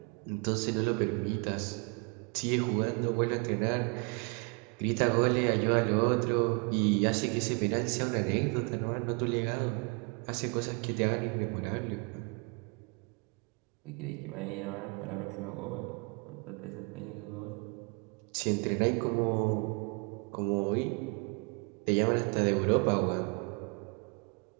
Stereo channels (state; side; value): quieter; left; 32.6 dB